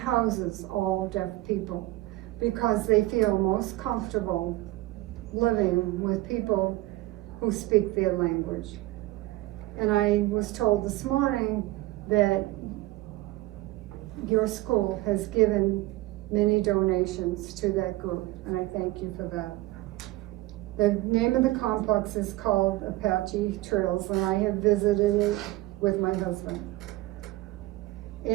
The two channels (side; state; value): left; quieter; 18.3 dB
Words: all deaf people because they feel most comfortable living with people who speak their language. And I was told this morning that your school has given many donations to that group, and I thank you for that. The name of the complex is called Apache Trails, and I have visited it with my husband.